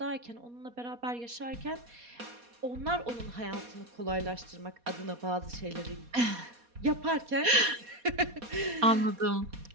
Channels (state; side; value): late; left; 4.2 ms